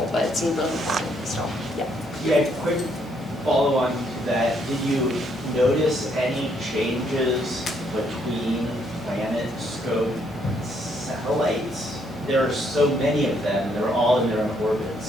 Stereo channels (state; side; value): normal; both; correlation 0.71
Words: but it's really important, so, yeah. Yeah, quick follow on to that. Did you notice any changes between PlanetScope satellites? There are so many of them, they're all in their own